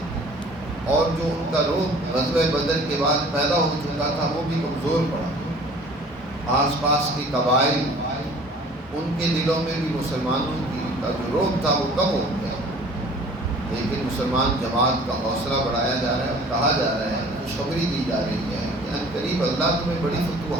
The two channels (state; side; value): normal; both; correlation 0.49